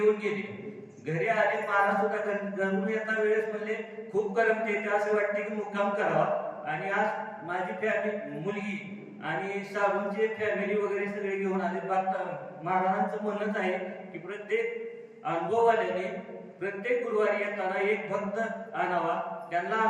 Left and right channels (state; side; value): identical; both; correlation 1.00